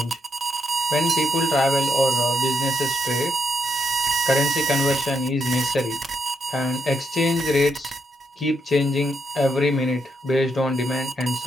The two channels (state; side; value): normal; both; correlation 0.79